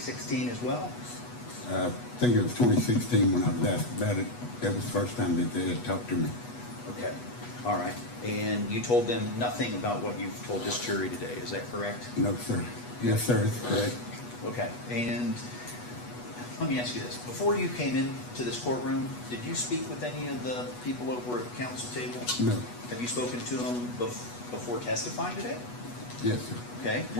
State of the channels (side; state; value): right; late; 8.2 ms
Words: as well? I think it was 2016 when I was asked about it. That was the first time that they had talked to me. Okay, all right. And you told them nothing about what you've told this jury today, is that correct? No, sir. Yes, sir, it's correct. Okay, and let me ask you this. Before you came into this courtroom, did you speak with any of the people over at the council table? No. Have you spoken to them before testifying today? Yes, sir. Okay,